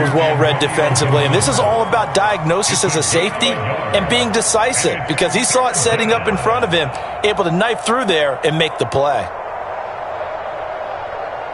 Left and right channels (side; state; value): both; identical; correlation 1.00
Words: well read defensively. And this is all about diagnosis as a safety and being decisive, because he saw it setting up in front of him, able to knife through there and make the play.